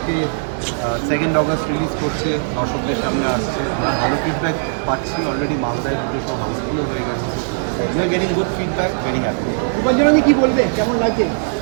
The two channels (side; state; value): left; silent; digital silence